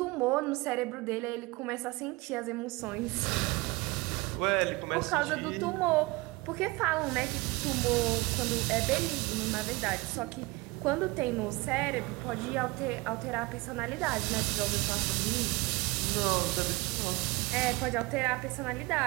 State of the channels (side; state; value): left; quieter; 23.5 dB